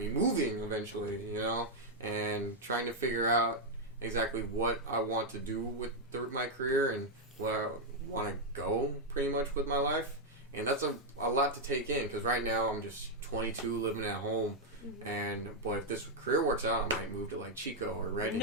moving eventually, you know, and trying to figure out exactly what I want to do with my career and where I want to go pretty much with my life. And that's a lot to take in, because right now I'm just 22 living at home. And boy, if this career works out, I might move to like Chico or Redding.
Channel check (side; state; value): both; normal; correlation -0.01